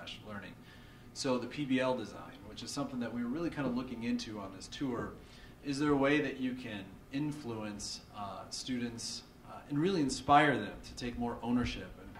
learning. So the PBL design, which is something that we were really kind of looking into on this tour, is there a way that you can influence students and really inspire them to take more ownership and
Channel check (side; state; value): both; identical; correlation 1.00